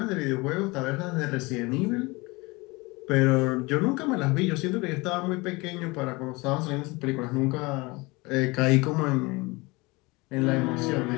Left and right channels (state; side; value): quieter; right; 24.3 dB